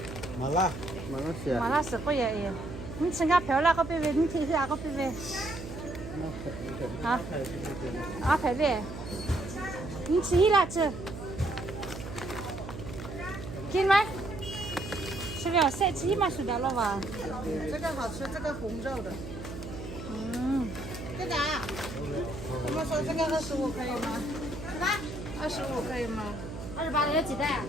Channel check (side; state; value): right; noise; hum, 10 dB below the sound